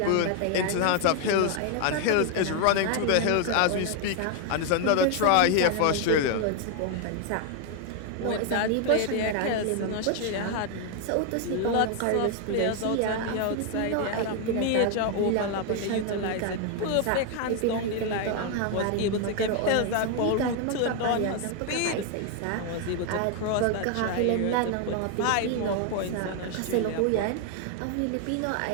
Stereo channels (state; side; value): different; both; correlation 0.00